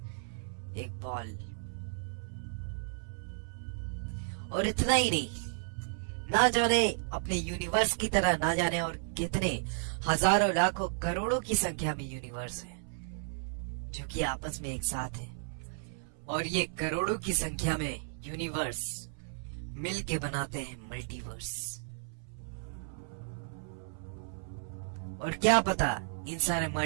एक बॉल। और इतना ही नहीं, ना जाने अपने यूनिवर्स की तरह ना जाने और कितने हजारों लाखों करोड़ों की संख्या में यूनिवर्स है जो कि आपस में एक साथ है। और ये करोड़ों की संख्या में यूनिवर्स मिलके बनाते हैं मल्टीवर्स। और क्या पता इन सारे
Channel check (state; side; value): silent; left; 55 dB below the other